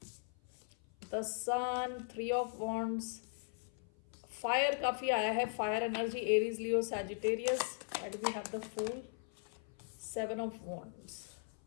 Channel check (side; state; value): right; silent; 52 dB below the other